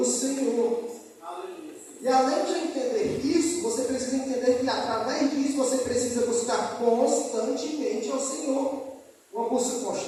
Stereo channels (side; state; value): both; identical; correlation 1.00